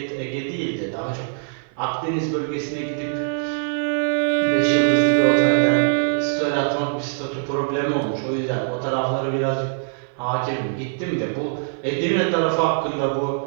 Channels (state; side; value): silent; left; 56 dB below the other